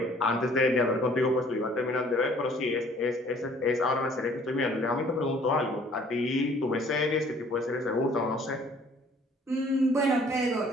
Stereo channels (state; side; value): normal; both; correlation 0.56